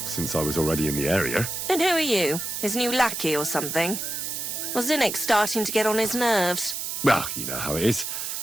since I was already in the area. And who are you? His new lackey or something? Was Zinnik starting to get on his nerves? Well, you know how it is.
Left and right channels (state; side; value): noise; right; hiss, 4 dB below the sound